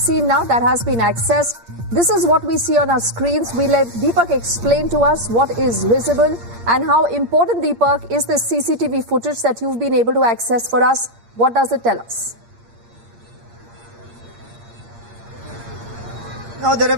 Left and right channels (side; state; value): left; late; 8.6 ms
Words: now that has been accessed. This is what we see on our screens. We let Deepak explain to us what is visible and how important, Deepak, is this CCTV footage that you've been able to access for us. What does it tell us? Now, there